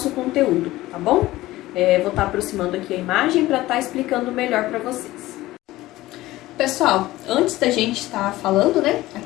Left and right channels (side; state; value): right; quieter; 17.2 dB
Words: conteúdo, tá bom? Vou estar aproximando aqui a imagem para estar explicando melhor para vocês. Pessoal, antes da gente estar falando, né,